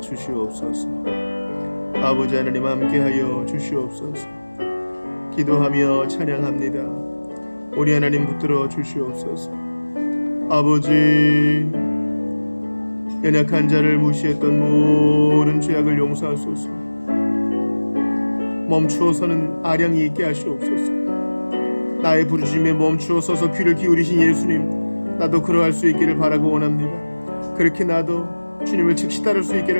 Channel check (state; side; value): inverted; both; correlation -1.00